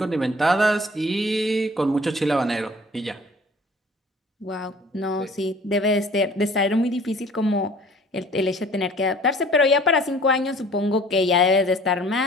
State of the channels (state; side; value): normal; both; correlation 0.50